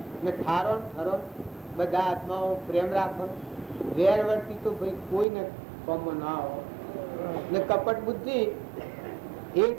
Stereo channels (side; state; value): left; drops out; at 5.2 s